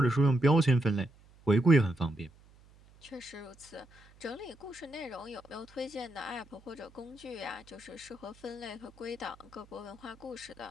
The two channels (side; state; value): right; noise; hum, 26 dB below the sound